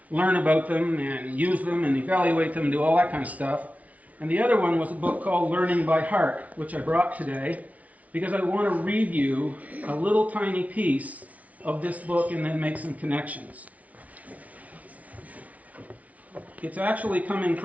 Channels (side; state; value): left; late; 0.069 ms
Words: learn about them and use them and evaluate them and do all that kind of stuff. And the other one was a book called Learning by Heart, which I brought today because I want to read you a little tiny piece of this book and then make some connections. It's actually coming